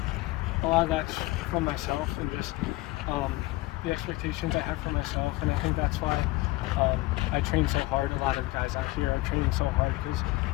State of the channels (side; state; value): right; quieter; 20.3 dB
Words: a lot of that's from myself and just the expectations I have for myself, and I think that's why I train so hard. A lot of guys out here are training so hard because